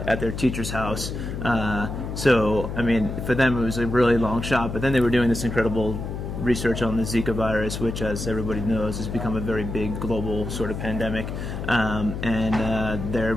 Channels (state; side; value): noise; left; hum, 6 dB below the sound